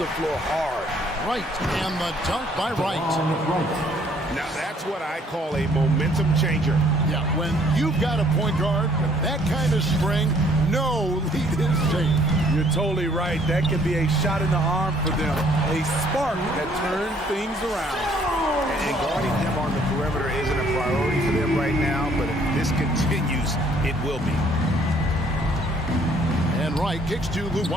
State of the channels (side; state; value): both; normal; correlation 0.62